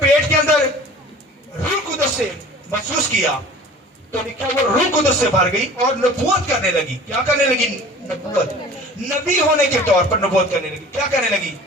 کے اندر روح قدس سے محسوس کیا تو لکھا وہ روح قدس سے بھر گئی اور نبوت کرنے لگی۔ کیا کرنے لگی؟ نبوت، نبی ہونے کے طور پر نبوت کرنے لگی۔ کیا کرنے لگی؟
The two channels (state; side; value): normal; both; correlation 0.44